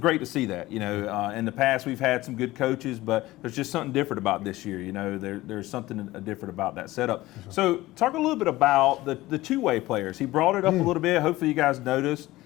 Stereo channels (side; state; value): right; quieter; 17.9 dB